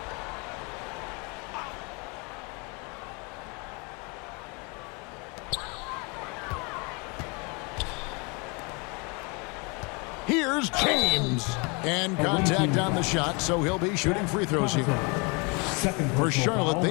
Here's James. And contact on the shot, so he'll be shooting free throws here. For Charlotte,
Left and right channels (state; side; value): quieter; right; 30.7 dB